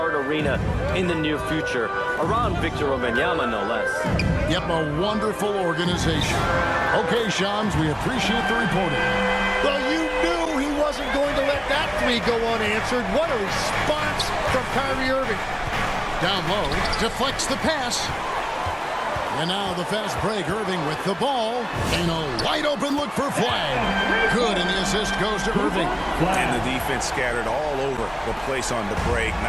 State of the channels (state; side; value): identical; both; correlation 1.00